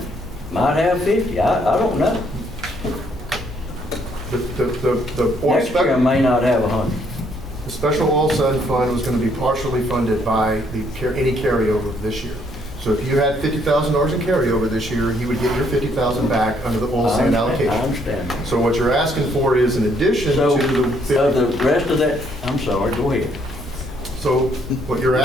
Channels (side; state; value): both; normal; correlation 0.69